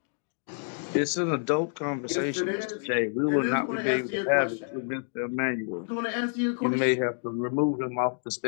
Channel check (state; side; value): silent; right; 59 dB below the other